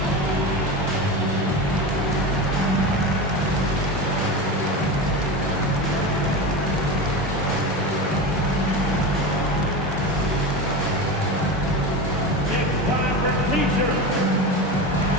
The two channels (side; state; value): both; normal; correlation 0.24